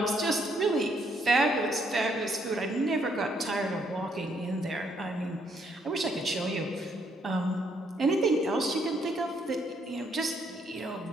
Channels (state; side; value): normal; both; correlation 0.71